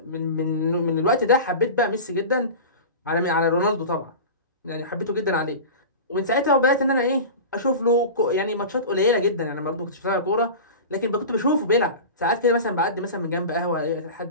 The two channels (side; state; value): both; inverted; correlation -0.31